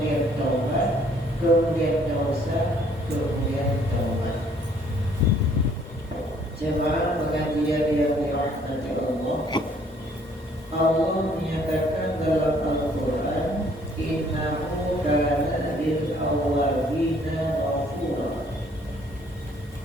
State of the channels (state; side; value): normal; both; correlation 0.61